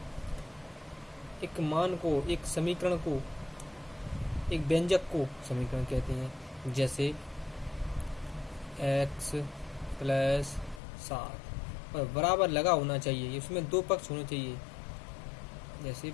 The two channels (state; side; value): drops out; right; at 10.8 s